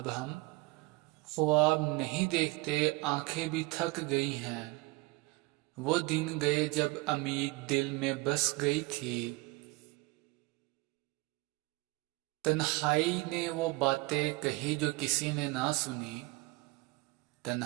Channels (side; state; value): left; quieter; 22.8 dB